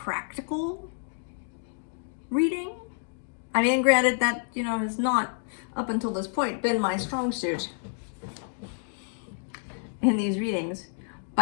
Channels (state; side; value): silent; right; digital silence